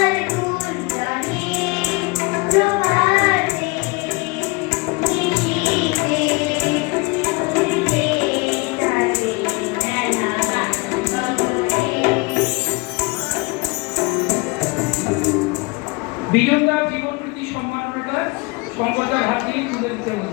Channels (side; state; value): right; quieter; 27.0 dB